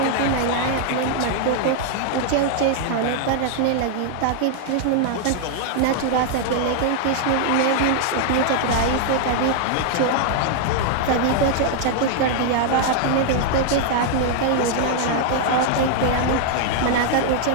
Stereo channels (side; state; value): both; different; correlation 0.00